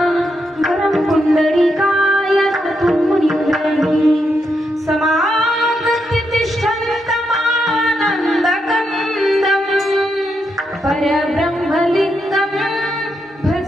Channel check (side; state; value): both; normal; correlation 0.82